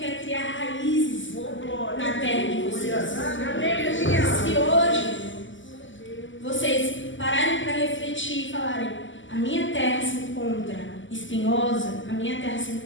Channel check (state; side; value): late; right; 0.55 ms